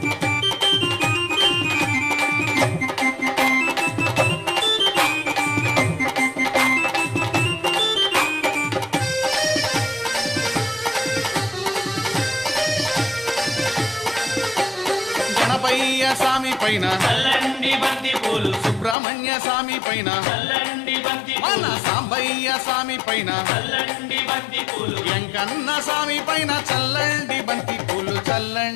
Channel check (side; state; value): right; drops out; at 18.9 s